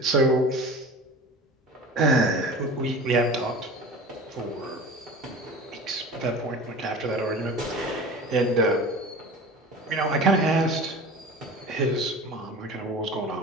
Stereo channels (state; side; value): normal; both; correlation 0.36